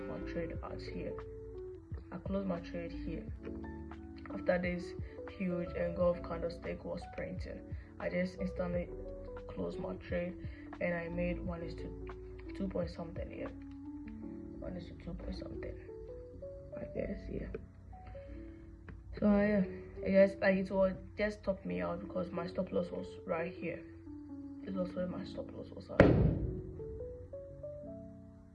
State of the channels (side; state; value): both; identical; correlation 1.00